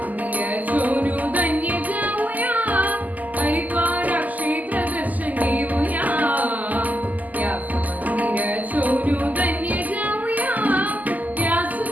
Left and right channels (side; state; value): left; late; 0.080 ms